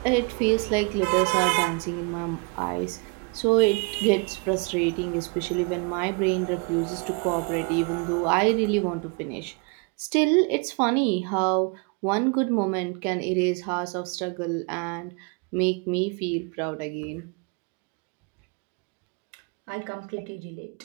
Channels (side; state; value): left; quieter; 32.9 dB